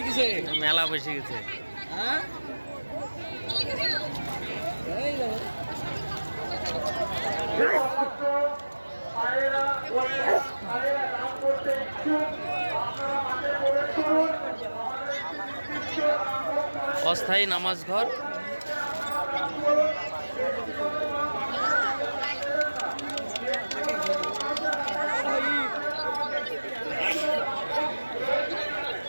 গেছে, মেলা বসে গেছে। হ্যাঁ অস্থায়ী নামাজ ঘর।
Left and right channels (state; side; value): inverted; both; correlation -1.00